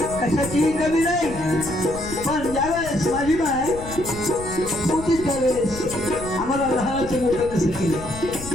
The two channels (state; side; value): noise; left; rumble, 12 dB below the sound